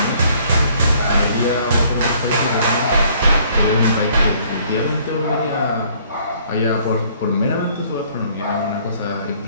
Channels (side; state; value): both; inverted; correlation -0.61